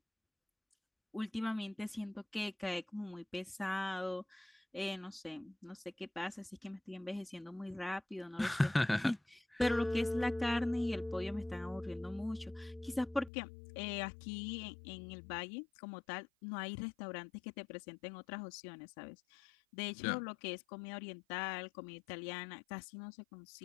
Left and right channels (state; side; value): drops out; right; at 13.3 s